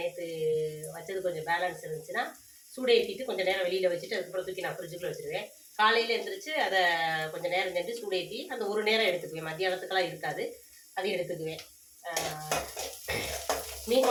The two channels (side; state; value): both; identical; correlation 1.00